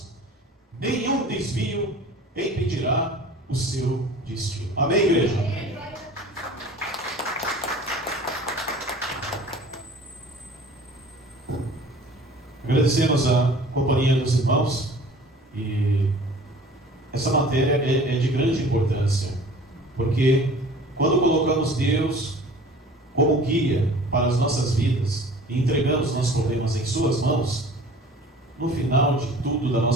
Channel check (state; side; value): normal; both; correlation 0.45